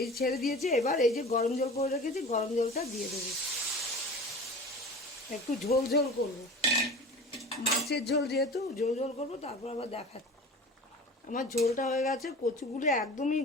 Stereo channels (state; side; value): normal; both; correlation 0.37